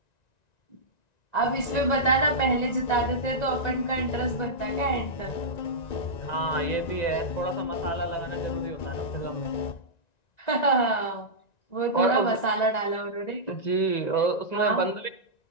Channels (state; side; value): late; right; 1.9 ms